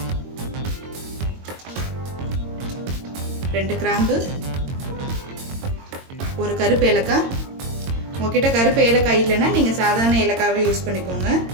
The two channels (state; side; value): late; left; 22 ms